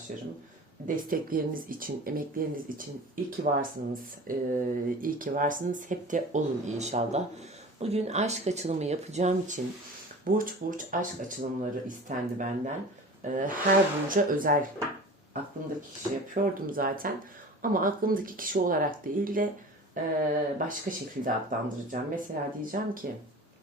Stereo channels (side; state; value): both; normal; correlation 0.38